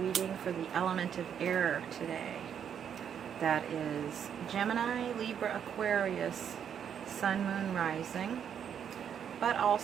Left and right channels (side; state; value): left; quieter; 8.4 dB